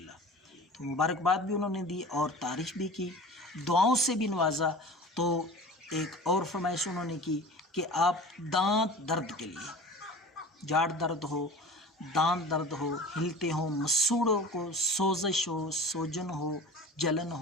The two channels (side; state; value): both; normal; correlation 0.37